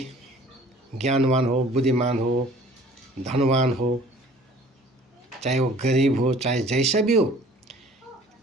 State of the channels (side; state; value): both; normal; correlation 0.51